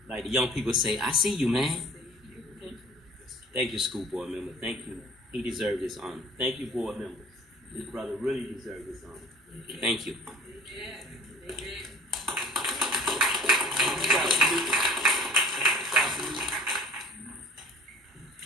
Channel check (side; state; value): both; normal; correlation 0.48